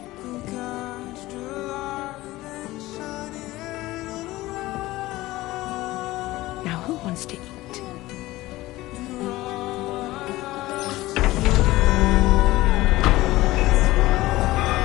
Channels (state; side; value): quieter; right; 18.0 dB